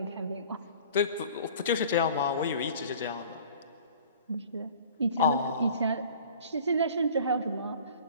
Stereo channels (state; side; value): inverted; both; correlation -0.46